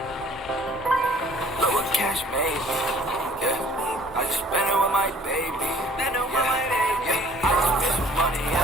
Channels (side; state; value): both; normal; correlation 0.56